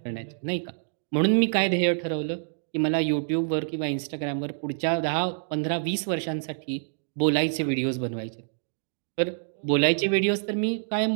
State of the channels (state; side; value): silent; left; digital silence